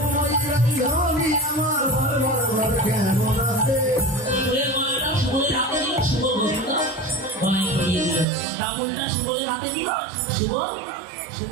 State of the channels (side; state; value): left; drops out; at 8.2 s